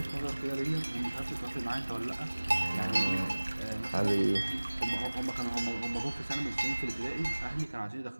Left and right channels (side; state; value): both; inverted; correlation -1.00